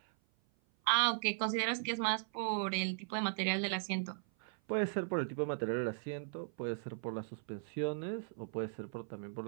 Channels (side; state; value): left; silent; 53 dB below the other